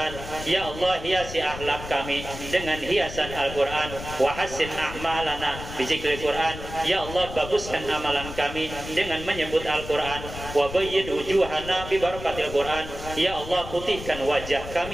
Ya Allah, hiasi akhlak kami dengan hiasan Al-Qur'an. Wa hassin a'malana bi zikril Quran. Ya Allah, baguskan amalan kami dengan menyebut Al-Quran. Wa bayyid wujuhana bi barakatil Quran. Ya Allah, putihkan wajah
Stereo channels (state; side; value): noise; left; rumble, 11 dB below the sound